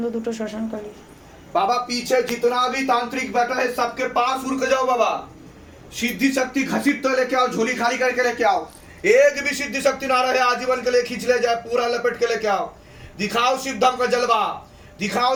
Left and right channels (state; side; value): identical; both; correlation 1.00